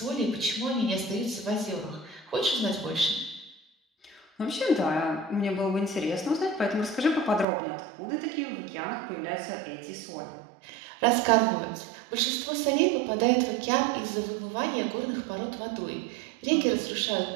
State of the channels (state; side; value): drops out; left; at 7.5 s